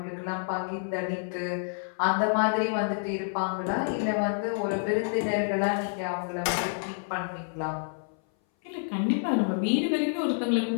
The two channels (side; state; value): right; silent; 57 dB below the other